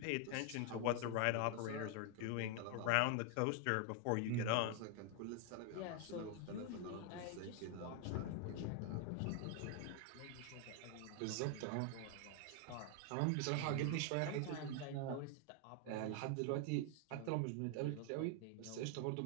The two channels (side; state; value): both; different; correlation 0.00